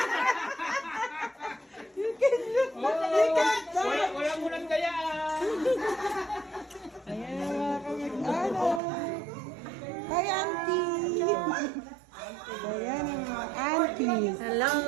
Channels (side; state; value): left; drops out; at 8.8 s